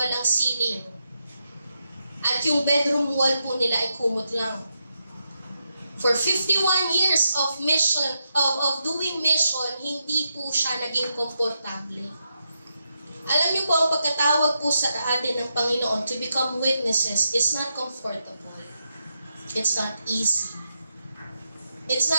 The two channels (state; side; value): inverted; both; correlation -0.84